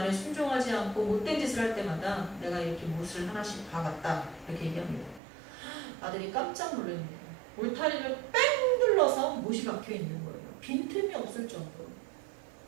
순종하지 않고 못된 짓을 할 때마다 내가 이렇게 못을 하나씩 박았다. 이렇게 얘기합니다. 아들이 깜짝 놀랍니다. 울타리를 뺑 눌러서 못이 박혀 있는 거예요. 빈틈이 없을 정도로.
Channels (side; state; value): left; drops out; at 5.2 s